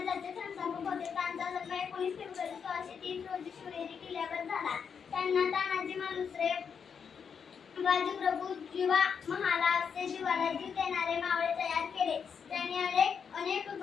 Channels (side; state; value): right; quieter; 6.7 dB